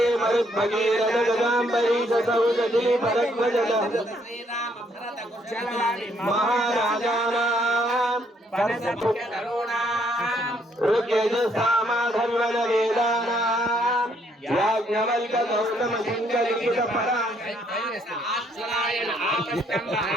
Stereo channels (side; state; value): both; normal; correlation 0.69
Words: मरुद्भगीरथ गदाम्बरी सौदती भरद्वज महाराजाना ऋग्यजुस्सामधर्वण वेदानां याज्ञवल्क्य गौतम सिंहलिखित आश्चर्यायन आपस्तंभ